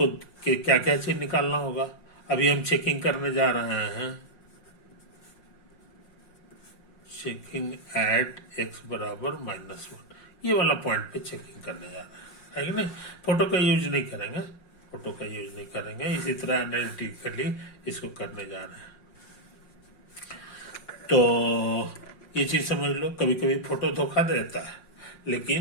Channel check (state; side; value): late; right; 5.6 ms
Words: क्या क्या चीज निकालना होगा। अभी हम चेकिंग करने जा रहे हैं, चेकिंग एट x बराबर -1, ये वाला पॉइंट पे चेकिंग करने जा रहे हैं, है कि नहीं। फोटो का यूज नहीं करेंगे, फोटो का यूज नहीं करेंगे। इसी तरह एनालिटिकली इसको करने जा रहे हैं। तो ये चीज समझ लो, कभी कभी फोटो धोखा देता है,